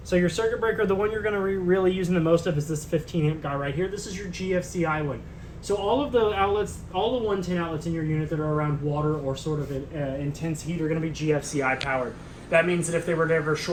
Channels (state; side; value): identical; both; correlation 1.00